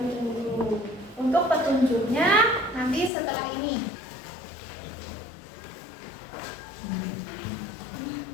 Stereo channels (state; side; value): drops out; right; at 3.1 s